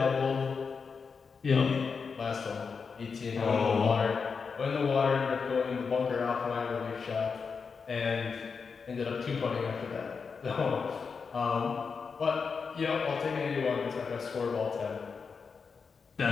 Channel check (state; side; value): quieter; right; 5.4 dB